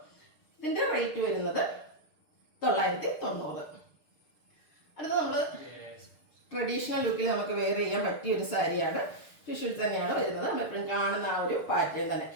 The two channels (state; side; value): late; right; 6.5 ms